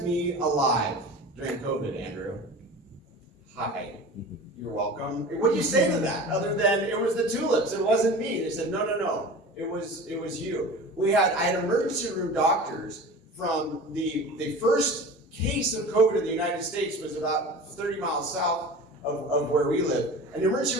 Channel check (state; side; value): normal; both; correlation 0.36